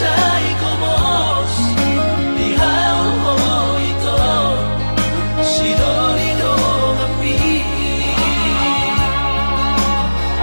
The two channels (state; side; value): inverted; both; correlation -1.00